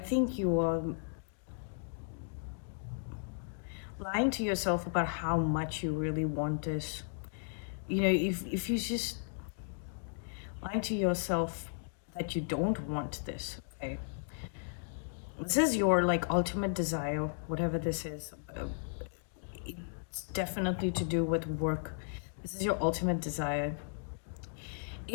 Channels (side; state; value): right; silent; digital silence